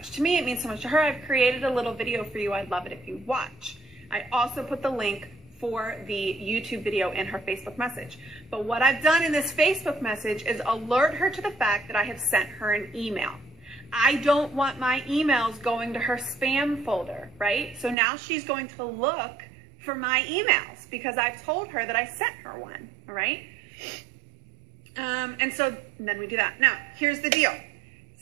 to me. It means so much to her. I've created a little video for you. I'd love it if you watch. I also put the link for the YouTube video in her Facebook message. But what I've done in this Facebook message is alert her to the fact that I have sent her an email. I don't want my emails going to her spam folder, right? So now she's going to look for my emails because I've told her that I sent her one, all right? And so then we do that. Now, here's the deal.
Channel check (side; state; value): left; drops out; at 17.9 s